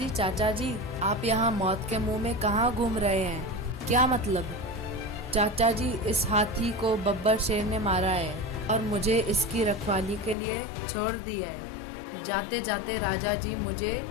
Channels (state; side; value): drops out; right; at 10.4 s